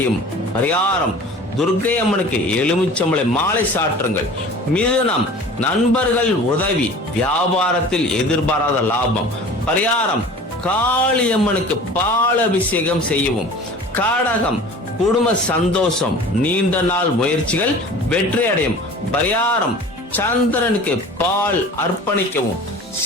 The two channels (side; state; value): both; normal; correlation 0.42